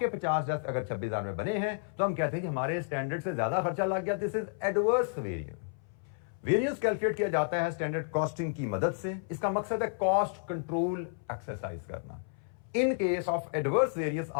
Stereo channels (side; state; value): right; silent; 57 dB below the other